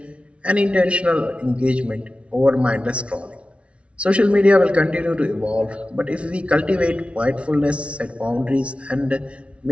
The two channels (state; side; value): late; left; 0.061 ms